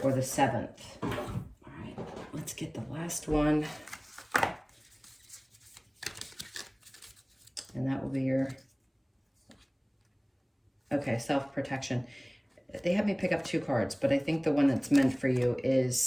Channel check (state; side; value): identical; both; correlation 1.00